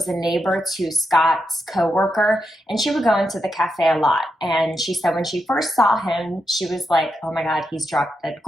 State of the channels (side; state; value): both; normal; correlation 0.85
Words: a neighbor to Scott's coworker, and she would go into the cafe a lot. And she said when she first saw him, she was like, oh my God, he's drop dead